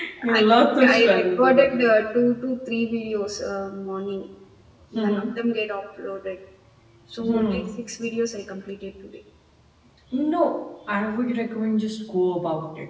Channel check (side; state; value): both; identical; correlation 1.00